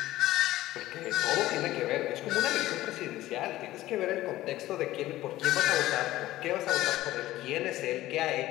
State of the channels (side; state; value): right; quieter; 15.9 dB